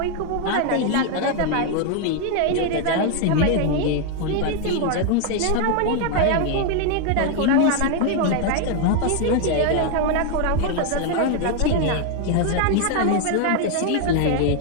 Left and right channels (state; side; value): different; both; correlation 0.01